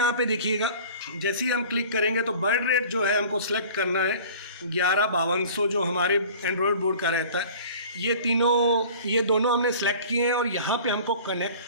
पे देखिएगा, जैसे ही हम क्लिक करेंगे तो बर्ड रेट जो है हमको सेलेक्ट करना है 11-5200 जो हमारे एंड्रॉयड बोर्ड का रहता है। ये दोनों हमने सेलेक्ट किए हैं और यहाँ पे हमको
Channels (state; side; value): inverted; both; correlation -0.44